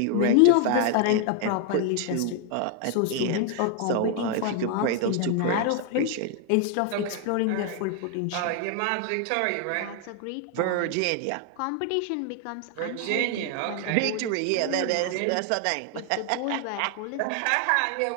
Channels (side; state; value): both; different; correlation 0.00